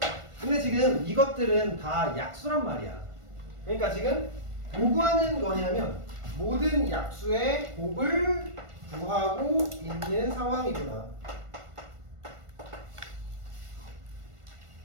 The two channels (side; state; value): left; late; 1.5 ms